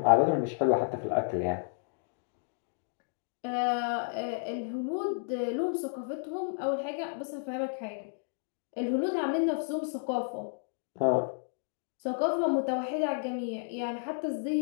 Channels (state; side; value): silent; right; digital silence